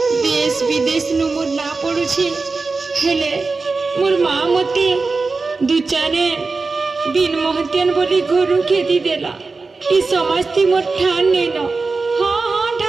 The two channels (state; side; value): quieter; left; 4.0 dB